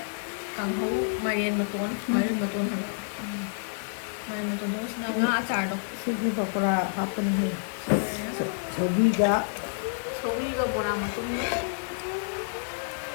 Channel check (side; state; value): right; silent; 59 dB below the other